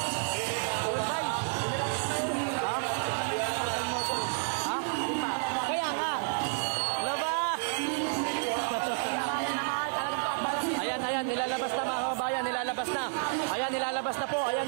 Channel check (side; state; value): left; silent; 58 dB below the other